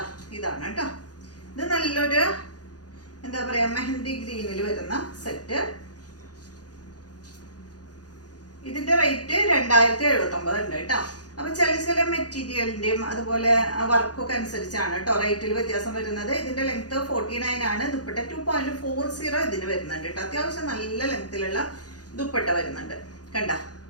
ഇതാണ് കേട്ടോ. ഇത് നല്ലൊരു എന്താ പറയാ മെഹന്തി ഗ്രീനിൽ വരുന്ന സെറ്റ്. ഇതിന്റെ റേറ്റ് 2079 ഉണ്ട് കേട്ടോ. അപ്പൊ ചില മെറ്റീരിയലിന്റെയും അതുപോലെ വർക്കൊക്കെ അനുസരിച്ചാണ് കേട്ടോ റേറ്റിൽ വ്യത്യാസം വരുന്നത്. ഇതിന്റെ ലെങ്ത് 49 ആണ്. ദുപ്പട്ട 2.40 ഇതിന് വരുന്നുണ്ട് കേട്ടോ. അത്യാവശ്യം നല്ല ലെങ്ത്തിലുള്ള ദുപ്പട്ട വരുന്നുണ്ട്. കണ്ട,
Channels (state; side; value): late; right; 0.68 ms